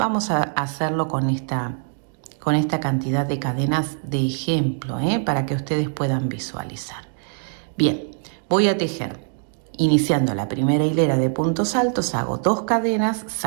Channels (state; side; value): silent; left; 61 dB below the other